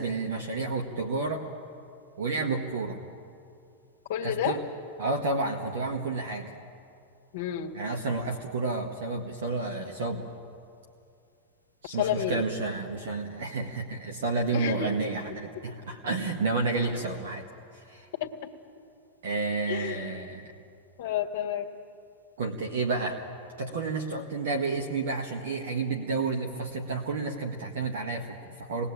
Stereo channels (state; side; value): inverted; both; correlation -0.39